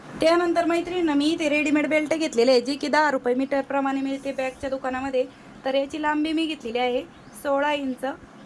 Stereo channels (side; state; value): both; identical; correlation 1.00